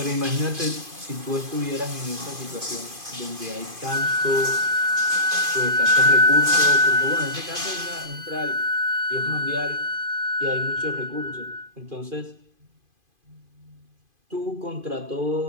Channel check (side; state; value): left; late; 2.5 ms